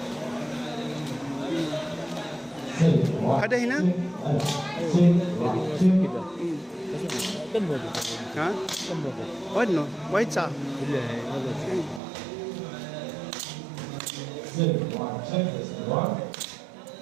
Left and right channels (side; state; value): left; drops out; at 12.0 s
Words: Ada hina? Ha? What no? White sa?